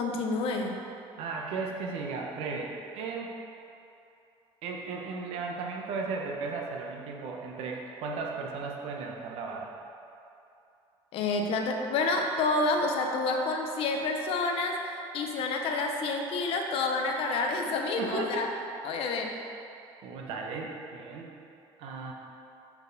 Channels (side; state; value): both; normal; correlation 0.21